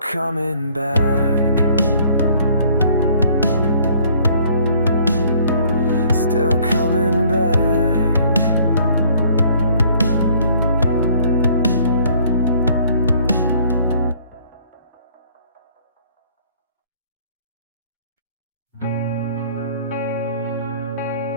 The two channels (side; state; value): both; inverted; correlation -0.59